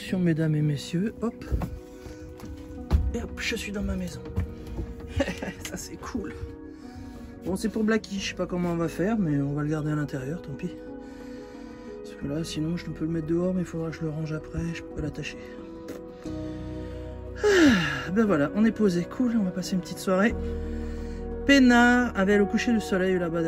mesdames et messieurs. Hop. Et hop, je suis dans ma maison. Ça, c'est cool. Bon, c'est pour Blacky. Je sais pas comment on va faire, mais on va le garder à l'intérieur, tant pis. Parce que là, sinon, je peux le mettre dehors, mais il faudra que je le range après. Je peux pas l'attacher. Ben voilà, on est posé. Cool, on va passer une petite soirée peinard avec le coucher du soleil là-bas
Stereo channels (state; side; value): identical; both; correlation 1.00